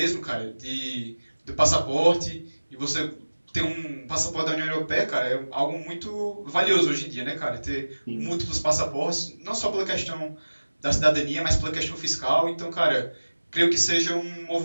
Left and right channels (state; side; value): inverted; both; correlation -1.00